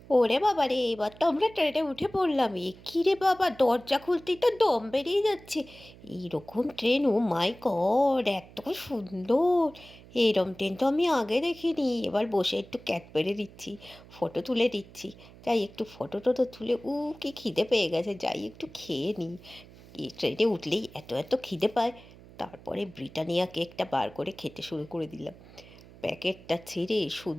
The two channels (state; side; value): noise; right; hum, 21 dB below the sound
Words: ওরে বাবা রে, এবার তো আমরা ট্রেনে উঠে পড়লাম। এ কি রে বাবা, দরজা খুলতেই তো দম বেরিয়ে যাচ্ছে। এইরকম ট্রেন, ও মাই গড, এত সুন্দর! এরম ট্রেন তো আমি আগে দেখিনি। এবার বসে একটু ক্যাট পেরে দিচ্ছি, ফটো তুলে দিচ্ছি। যাই একটু ফটো টটো তুলে, কি খিদে পেয়ে গেছে, যাই একটু খেয়ে নিই। এই ট্রেনে উঠলেই এত এত খিদে পায়। তারপরে ব্রিটানিয়া কেকটা বার করে খেতে শুরু করে দিলাম। প্যাকেটটা ছিঁড়ে